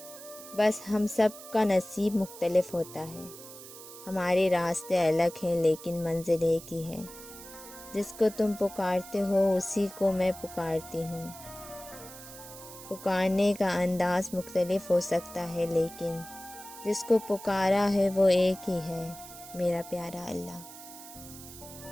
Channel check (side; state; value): right; noise; hiss, 15 dB below the sound